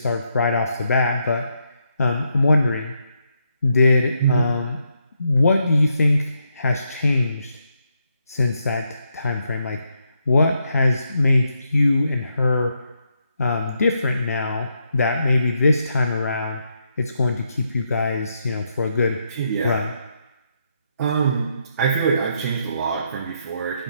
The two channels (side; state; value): both; inverted; correlation -0.79